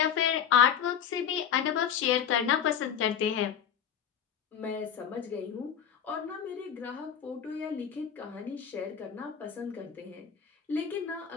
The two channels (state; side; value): quieter; right; 8.4 dB